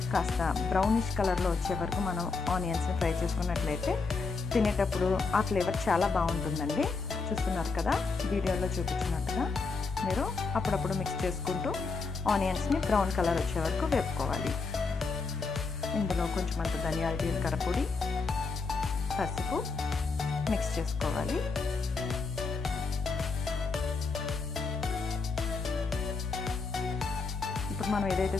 కాస్త బ్రౌనిష్ కలర్లో వచ్చే వరకు మనం ఆనియన్స్ని ఫ్రై చేసుకున్నట్లయితే తినేటప్పుడు ఆ ఫ్లేవర్ చాలా బాగుంటుందండి. చూస్తున్నారు కదా, వీడియోలో చూపించినట్టుగా మీరు అప్పుడప్పుడు మిక్స్ చేసుకుంటూ ఆనియన్స్ని బ్రౌన్ కలర్ వచ్చే వరకు వేపుకోవాలి. ఇందులో కొంచెం అంత ధనియాల జీలకర్ర పొడి, పసుపు మిక్స్ చేసుకోవాలి. ఇప్పుడు మనం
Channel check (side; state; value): right; quieter; 4.4 dB